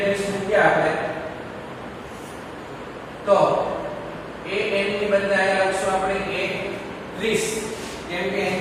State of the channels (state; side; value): identical; both; correlation 1.00